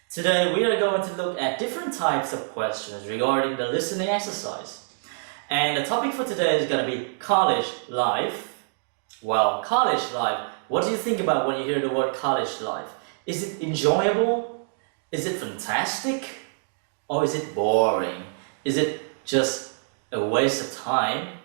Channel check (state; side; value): silent; left; digital silence